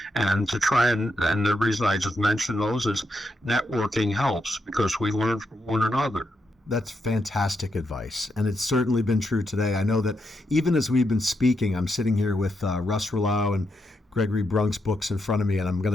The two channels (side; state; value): both; normal; correlation 0.82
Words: And and the reason I just mentioned those is networking helps because we learn from one another. That's fantastic advice, and it's certainly been true today. I know that even as we've been speaking, I'm sitting here with Russ Roulau and Gregory Brunk's books in front of me, and I'm going